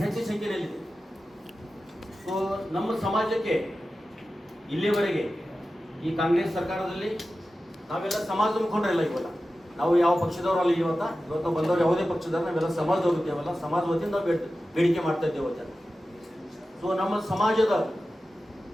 ಹೆಚ್ಚಿನ ಸಂಖ್ಯೆಯಲ್ಲಿದೆ. ಸೊ ನಮ್ಮ ಸಮಾಜಕ್ಕೆ ಇಲ್ಲಿವರೆಗೆ ಈ ಕಾಂಗ್ರೆಸ್ ಸರ್ಕಾರದಲ್ಲಿ ನಾವೆಲ್ಲ ಸಮಾಜ ಮುಖಂಡರೆಲ್ಲ ಇವಲ್ಲ, ನಾವು ಯಾವ ಪಕ್ಷದವರಲ್ಲ. ಇವತ್ತು ಬಂದವರು ಯಾವುದೇ ಪಕ್ಷದವ್ರು ನಾವೆಲ್ಲ ಸಮಾಜದವ್ರು ಇದ್ದೇವಲ್ಲ, ಸಮಾಜ ವತಿಯಿಂದ ನಾವು ಬೇಡಿಕೆ ಮಾಡ್ತಾ ಇದ್ದೇವೆ ಇವತ್ತು. ಸೊ ನಮ್ಮ ಸಮಾಜದ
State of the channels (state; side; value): normal; both; correlation 0.94